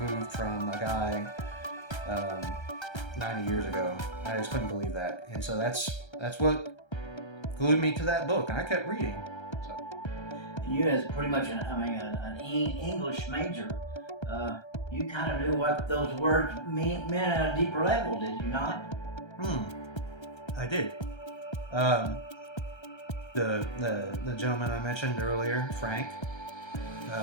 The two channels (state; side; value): late; right; 1.3 ms